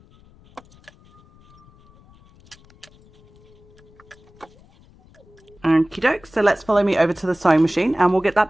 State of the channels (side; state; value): left; noise; rumble, 27 dB below the sound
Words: Okie doke, so let's follow me over to the sewing machine and we'll get that